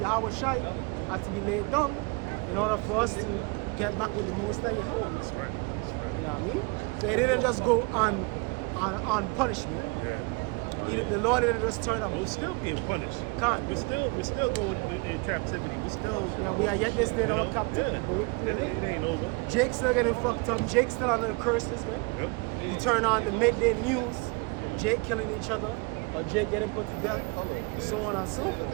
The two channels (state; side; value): quieter; left; 29.8 dB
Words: Yahweh Shai had to be laid down in order for us to get back with the Most High Yahweh. That's right. You know what I mean? So it didn't just go on punishment. The Lord didn't just turn up. We're still being punished. Can't. We're still going in captivity. We're still. Yeah, we are yet this day in You our know, captivity. yeah. It ain't over. Jake's still getting fucked up. Jake's still under the curses, man. Yep. You turn on the midday news, Jake killing each other, or Jake getting put to death, so on and so